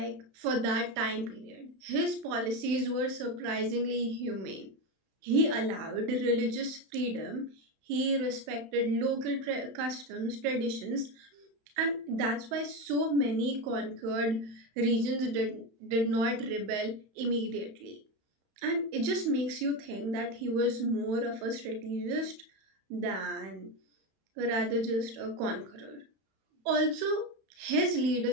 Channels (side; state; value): left; late; 31 ms